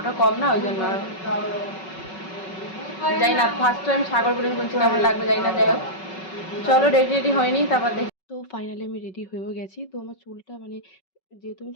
কম না, ওই জন্য যাই না। ফার্স্ট টাইম সাগর বলে বলছি, কেমন লাগবে যাই না। যাই হোক, চলো রেডি হয়নি, তারপর দেখি। তো ফাইনালি আমি রেডি হয়েও গেছি। তো আমার চুলটা মানে যেহেতু আমি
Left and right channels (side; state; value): right; late; 5.4 ms